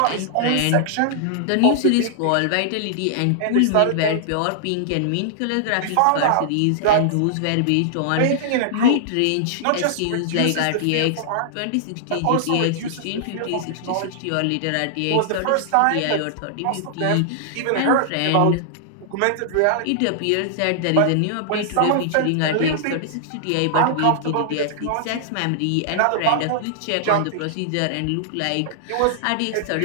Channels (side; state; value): both; different; correlation -0.01